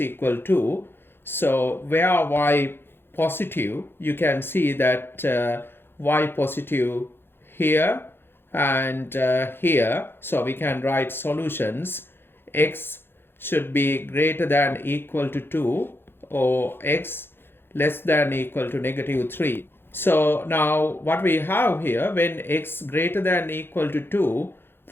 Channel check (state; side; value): late; right; 0.10 ms